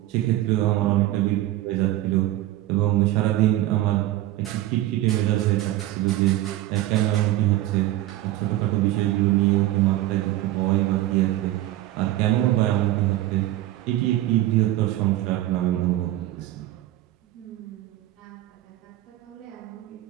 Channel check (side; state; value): left; quieter; 15.3 dB